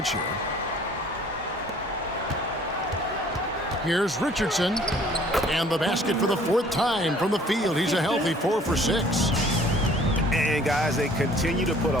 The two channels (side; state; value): both; normal; correlation 0.55